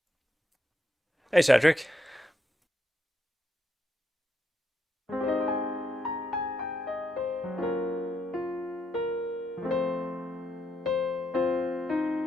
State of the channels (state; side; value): normal; both; correlation 0.79